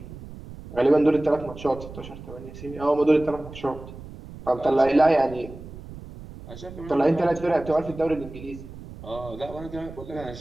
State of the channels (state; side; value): noise; right; rumble, 14 dB below the sound